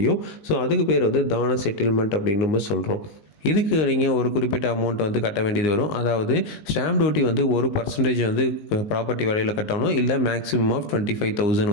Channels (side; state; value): right; late; 19 ms